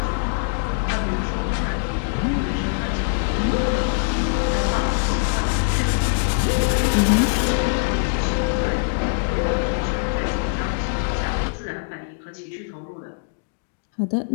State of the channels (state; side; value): silent; right; digital silence